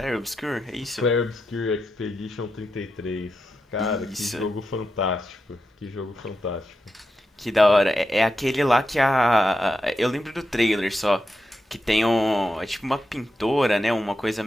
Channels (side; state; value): both; normal; correlation 0.87